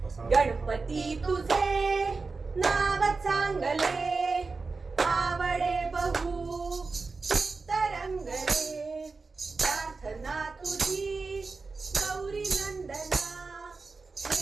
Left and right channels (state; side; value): quieter; left; 4.1 dB